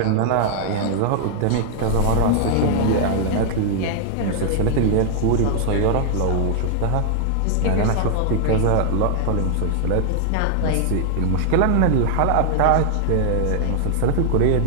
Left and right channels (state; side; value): different; both; correlation 0.00